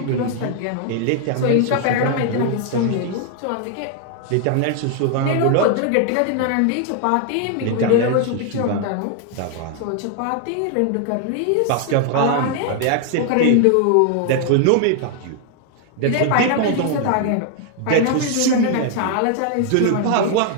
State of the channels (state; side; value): different; both; correlation 0.00